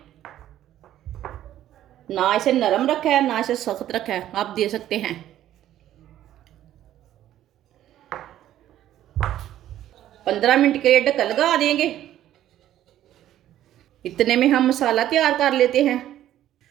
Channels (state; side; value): quieter; left; 12.4 dB